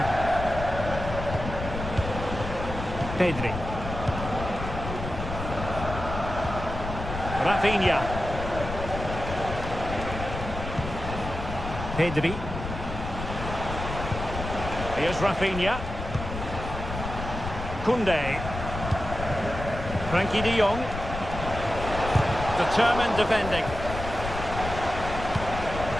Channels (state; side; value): noise; left; rumble, 7 dB below the sound